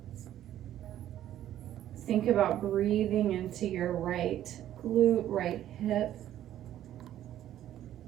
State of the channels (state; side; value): quieter; left; 12.0 dB